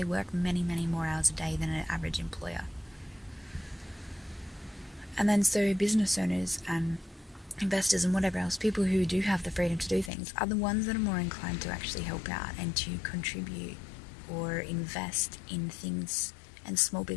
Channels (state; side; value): drops out; right; at 10.1 s